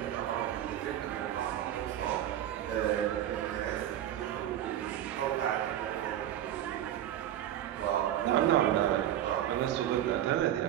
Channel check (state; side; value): quieter; left; 11.7 dB